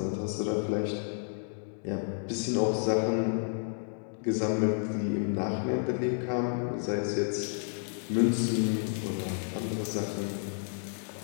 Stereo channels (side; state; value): right; silent; digital silence